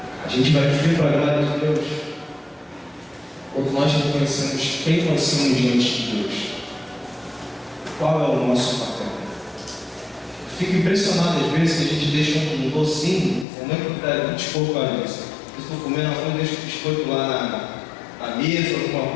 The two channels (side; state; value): right; drops out; at 13.5 s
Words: A gente vai viver para a glória de Deus quando nós reconhecemos quem nós somos diante de Deus. Qual é o nosso papel? Fico impressionado às vezes que a gente deixa um docinho, como é que está biscoito para isso? Eu estou comendo arroz, deixo o biscoito lá na mesa, alguma